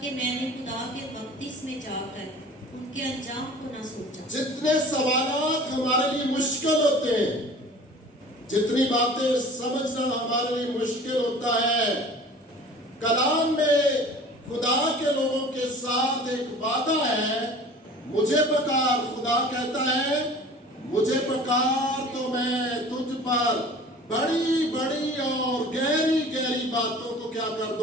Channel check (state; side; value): normal; both; correlation 0.44